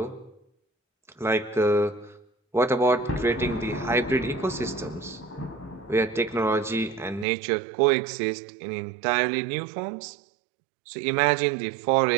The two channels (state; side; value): drops out; left; at 7.2 s